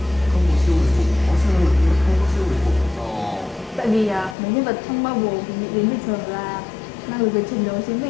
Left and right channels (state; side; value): drops out; right; at 4.4 s